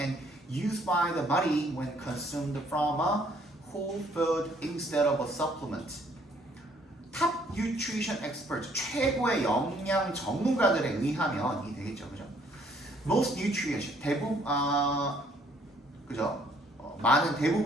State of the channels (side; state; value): both; normal; correlation 0.64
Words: used by the body when consumed from a whole food instead of a supplement. top nutrition experts, 최고의 영양 전문가들에 의하면 이 되겠죠, 그죠? most nutrients, 그죠? 많은